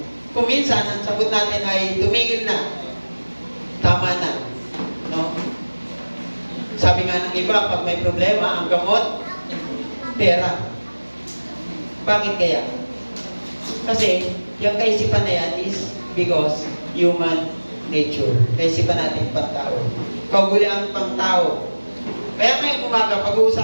kung minsan, ang sagot natin ay tumigil na, tama na. No? Sabi nga ng iba, pag may problema, ang gamot, pera. Bakit kaya? Kasi, yung kaisipan na yan is because human nature. Kaisipan natin pang tao. Kaugalian pang tao. Kaya ngayong umaga,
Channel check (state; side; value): inverted; both; correlation -1.00